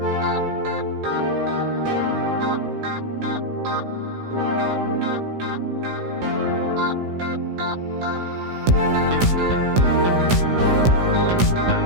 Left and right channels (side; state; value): left; late; 16 ms